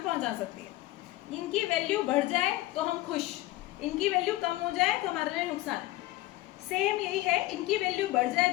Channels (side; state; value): right; quieter; 17.7 dB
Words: पहुंचा सकती है। इनकी वैल्यू बढ़ जाए तो हम खुश, इनकी वैल्यू कम हो जाए तो हमारे लिए नुकसान। सेम यही है, इनकी वैल्यू बढ़ जाए